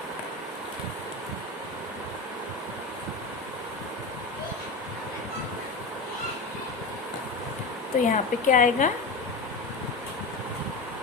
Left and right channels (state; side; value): quieter; right; 3.3 dB